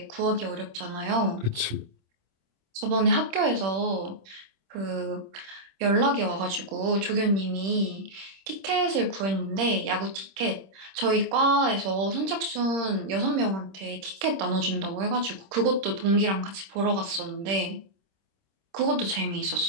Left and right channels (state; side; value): late; left; 26 ms